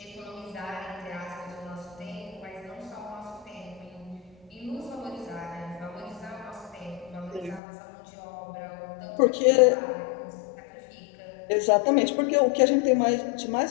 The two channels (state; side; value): drops out; right; at 7.6 s